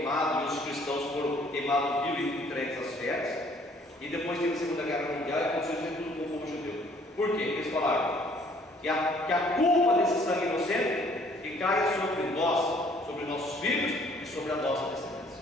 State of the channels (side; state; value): both; normal; correlation 0.59